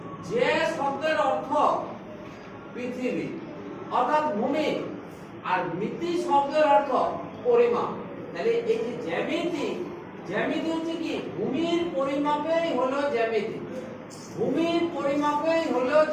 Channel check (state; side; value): identical; both; correlation 1.00